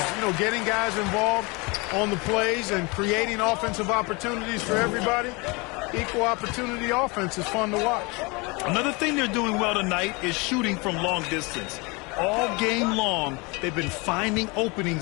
You know, getting guys involved on the plays and creating offensive opportunities for everybody. Equal opportunity offense is fun to watch. Another thing they're doing well tonight is shooting from long distance. All game long, they've been finding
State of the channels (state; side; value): quieter; right; 27.5 dB